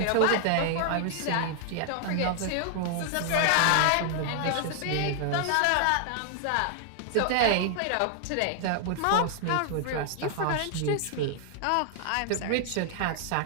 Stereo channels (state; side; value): different; both; correlation 0.00